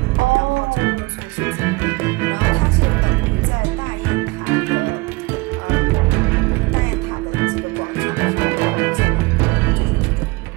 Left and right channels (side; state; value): left; quieter; 24.6 dB